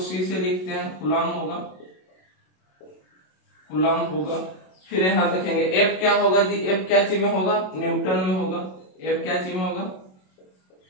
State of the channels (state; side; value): late; right; 27 ms